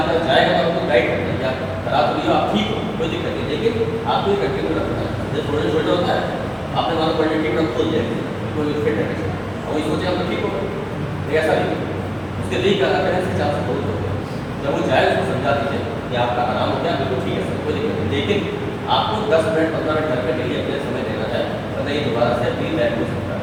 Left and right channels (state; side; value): identical; both; correlation 1.00